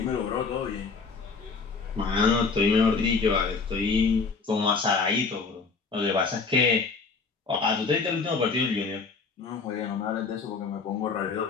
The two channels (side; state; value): right; quieter; 4.7 dB